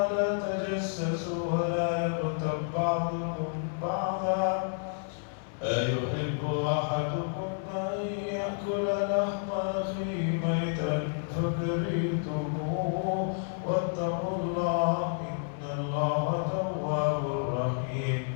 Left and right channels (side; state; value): right; silent; 58 dB below the other